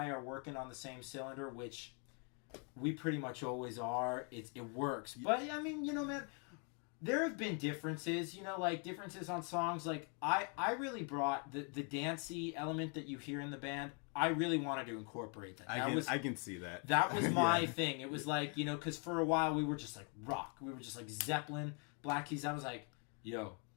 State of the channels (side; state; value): right; quieter; 38.3 dB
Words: are working on the same cylinder, which we pretty much always are. It works. But, I mean, man, there have been differences, like differences on songs. Like, I really brought the dancey element that you hear in the band. I really wanted to incorporate that. I can see that. That was my thing. It was like, because for a while we were just like rock. We were just like Zeppelin, Black Keys. I was like, yo,